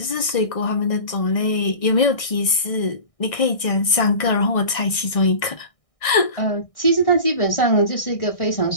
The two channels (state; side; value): late; right; 1.6 ms